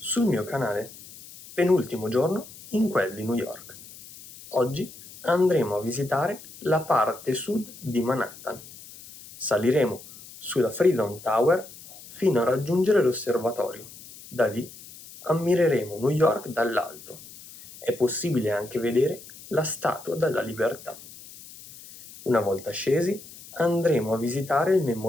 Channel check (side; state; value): left; noise; hiss, 18 dB below the sound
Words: mio canale. Penultimo giorno in quel di New York. Oggi andremo a visitare la parte sud di Manhattan. Saliremo sulla Freedom Tower fino a raggiungere l'osservatorio. Da lì ammireremo New York dall'alto. È possibile anche vedere la Statua della Libertà. Una volta scesi, andremo a visitare il